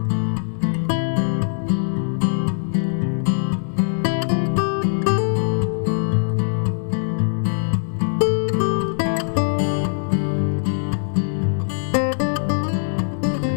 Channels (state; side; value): silent; right; digital silence